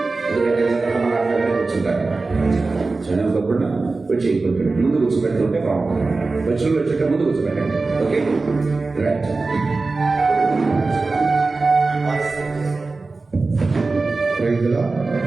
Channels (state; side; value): quieter; left; 3.7 dB